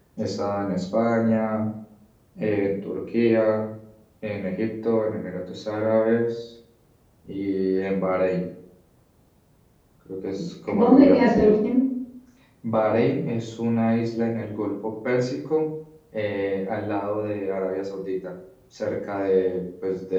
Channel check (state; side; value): identical; both; correlation 1.00